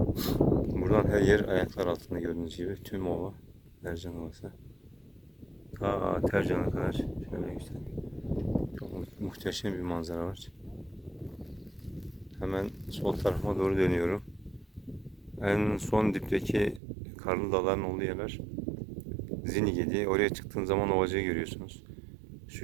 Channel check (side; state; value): left; drops out; at 16.8 s